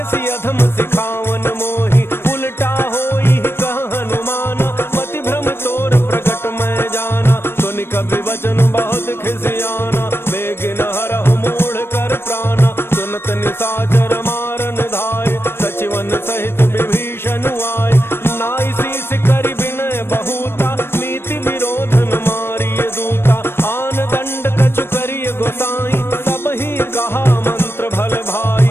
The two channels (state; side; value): late; right; 0.12 ms